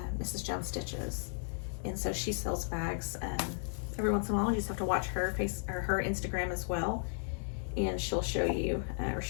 Mrs. Jones Stitches. And so she sells bags every once in a while. You just have to watch her her Instagram as well. And she'll show you, or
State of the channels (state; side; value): silent; right; digital silence